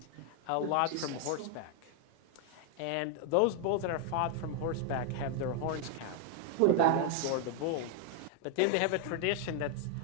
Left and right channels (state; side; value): different; both; correlation 0.00